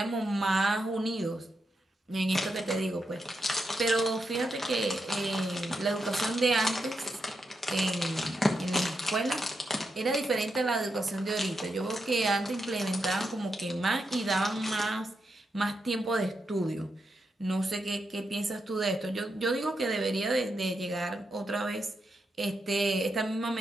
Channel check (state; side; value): normal; both; correlation 0.84